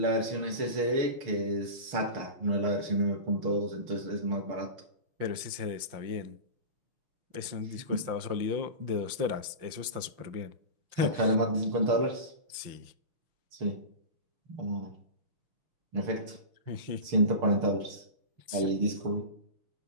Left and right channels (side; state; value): left; late; 5.8 ms